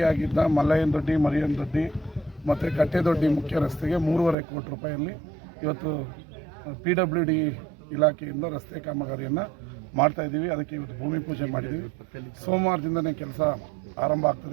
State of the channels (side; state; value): left; drops out; at 4.4 s